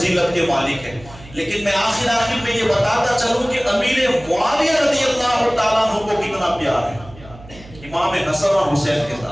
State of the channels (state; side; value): noise; right; hum, 20 dB below the sound